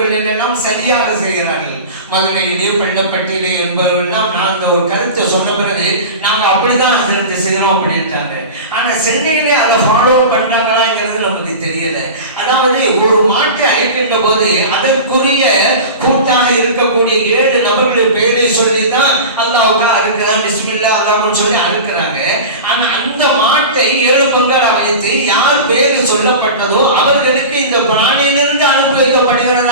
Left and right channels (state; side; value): inverted; both; correlation -0.31